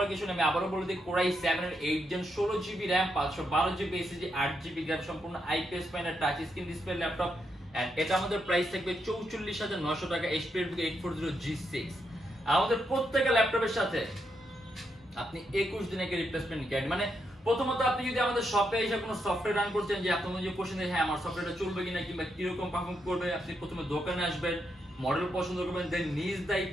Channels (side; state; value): both; normal; correlation 0.81